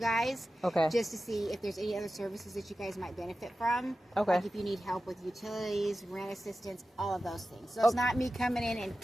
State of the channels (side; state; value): both; normal; correlation 0.94